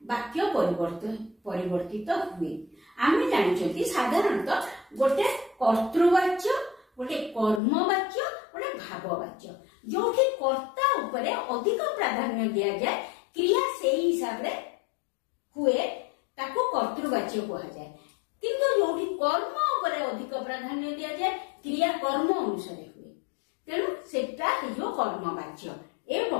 ବାକ୍ୟ ପରିବର୍ତ୍ତିତ ହୁଏ। ଆମେ ଜାଣିଛନ୍ତି ସାଧାରଣତଃ ଗୋଟେ କର୍ତ୍ତୃବାଚ୍ୟ, ଗୋଟେ କର୍ମବାଚ୍ୟ, ଗୋଟେ ଭାବବାଚ୍ୟ। ଯୋଉଠି କର୍ତ୍ତା ଉପରେ ଅଧିକ ପ୍ରାଧାନ୍ୟ ଦିଆଯାଏ, କ୍ରିୟା ସେଇ ହିସାବରେ ହୁଏ, ତାକୁ କର୍ତ୍ତୃବାଚ୍ୟ କୁହାଯାଏ। କିନ୍ତୁ ଯୋଉଠି କର୍ମ ଉପରେ ଅଧିକ ପ୍ରାଧାନ୍ୟ ଦିଆଯାଏ, କ୍ରିୟା କର୍ମ ଅନୁସାରେ ହୁଏ, ତେଣୁ ସେଟା ହେଇଯିବ କର୍ମବାଚ୍ୟ।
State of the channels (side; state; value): right; drops out; at 7.6 s